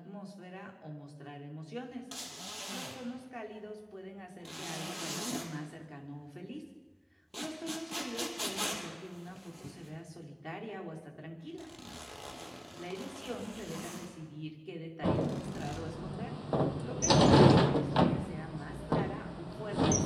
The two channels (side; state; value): both; identical; correlation 1.00